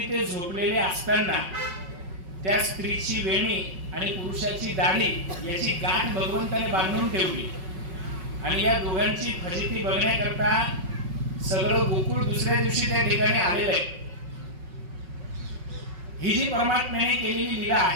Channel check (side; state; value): left; late; 5.3 ms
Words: ते झोपलेले असताना त्या स्त्रीची वेणी आणि पुरुषाची दाढी याची गाठ भगवंताने बांधून ठेवली आणि या दोघांची फजिती बघण्याकरता सगळं गोकुळ दुसऱ्या दिवशी त्या ठिकाणी आलेलं आहे. ही जी परमात्म्याने केलेली लीला